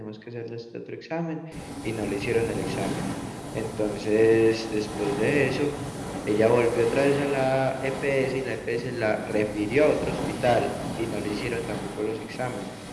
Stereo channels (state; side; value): identical; both; correlation 1.00